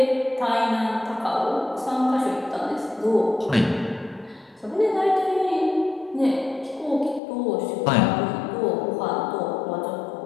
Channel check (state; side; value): drops out; right; at 7.2 s